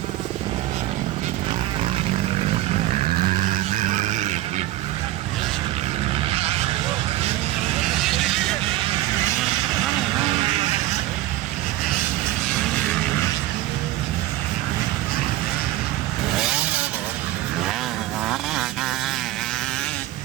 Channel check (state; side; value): quieter; left; 15.6 dB